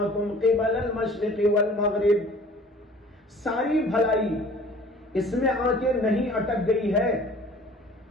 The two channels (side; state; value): both; normal; correlation 0.49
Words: قبل المشرق والمغرب، ساری بھلائی اس میں آ کے نہیں اٹک گئی ہے